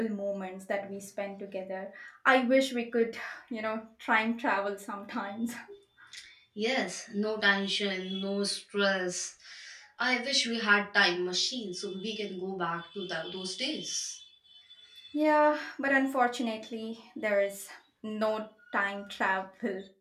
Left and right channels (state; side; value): identical; both; correlation 1.00